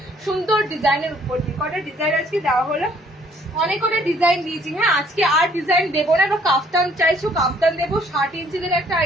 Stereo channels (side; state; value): both; normal; correlation 0.61